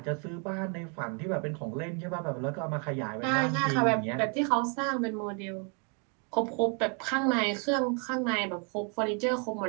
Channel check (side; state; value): left; quieter; 37.2 dB